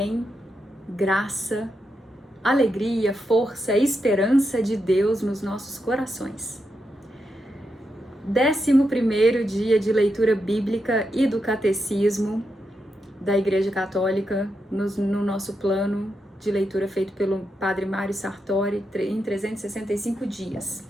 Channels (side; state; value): both; normal; correlation 0.85